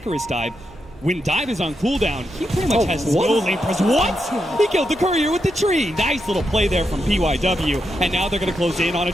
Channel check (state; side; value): normal; both; correlation 0.84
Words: dive. when Dive is on cooldown, he pretty much has no what? lane presence. What? He killed the courier with the tree. Nice little play there from PYW. And now they're going to close in on